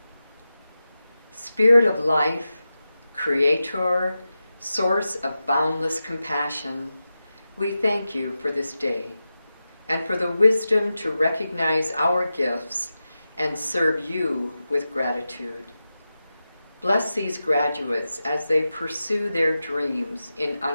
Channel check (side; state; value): both; inverted; correlation -0.92